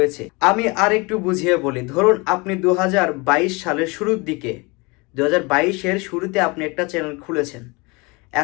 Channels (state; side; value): quieter; right; 27.2 dB